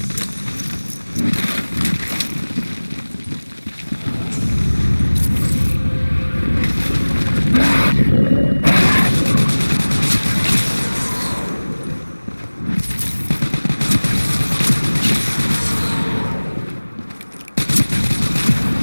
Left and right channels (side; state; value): both; inverted; correlation -1.00